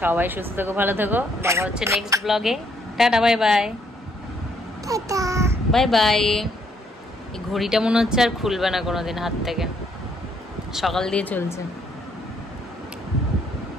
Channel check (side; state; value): both; normal; correlation 0.70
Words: সুস্থ থেকো, ভালো থেকো, দেখা হচ্ছে নেক্সট ব্লগে। Tata, bye bye. Bye bye. এই ঘড়িটা মনে হচ্ছে আর খুলবে না কোনোদিন হাত থেকে, সকাল দিয়ে চলছে।